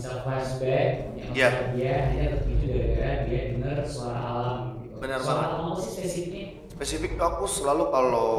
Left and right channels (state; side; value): identical; both; correlation 1.00